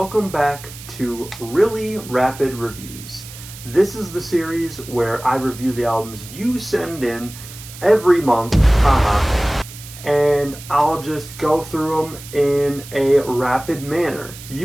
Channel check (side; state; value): right; noise; hiss, 15 dB below the sound